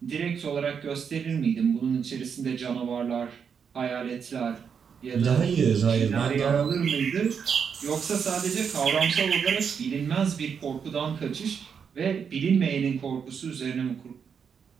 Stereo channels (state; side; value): quieter; left; 6.8 dB